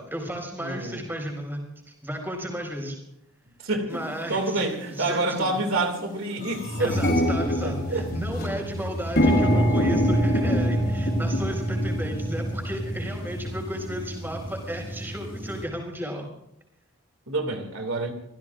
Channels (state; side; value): normal; both; correlation 0.55